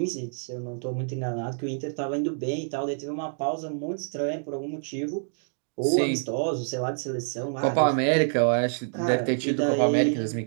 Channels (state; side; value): silent; left; digital silence